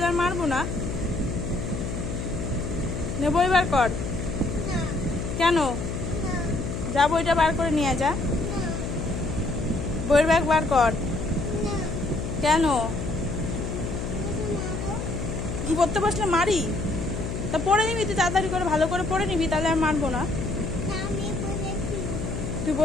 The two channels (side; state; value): left; noise; hum, 4 dB below the sound